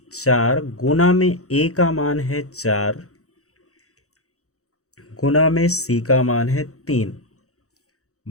4 गुना में a का मान है 4 गुना में c का मान है 3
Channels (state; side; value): late; right; 0.65 ms